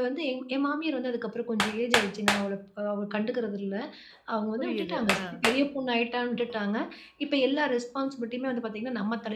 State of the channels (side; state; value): both; identical; correlation 1.00